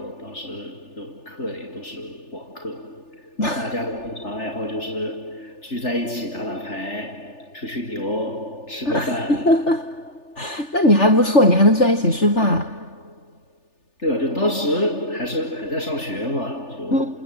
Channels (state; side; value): late; right; 3.4 ms